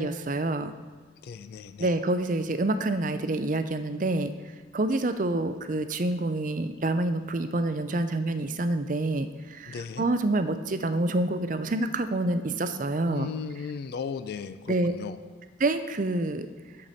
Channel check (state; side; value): normal; both; correlation 0.53